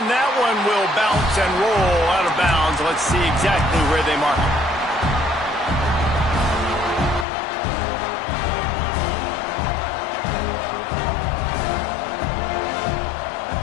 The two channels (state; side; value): drops out; right; at 7.2 s